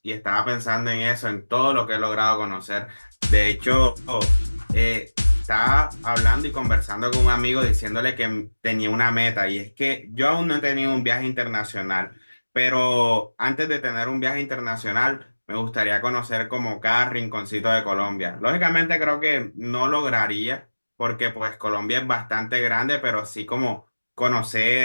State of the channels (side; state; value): both; inverted; correlation -1.00